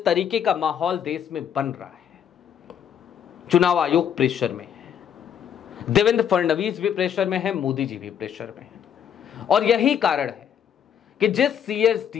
तरीके का माहौल देश में बन रहा है, चुनाव आयोग प्रेशर में है, देवेंद्र फडणवीस भी प्रेशर में है, मोदी जी भी प्रेशर में है। और यही कारण है कि जिस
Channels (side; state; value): right; quieter; 8.7 dB